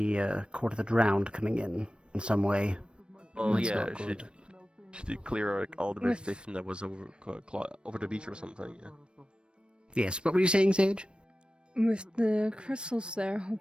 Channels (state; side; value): late; left; 0.056 ms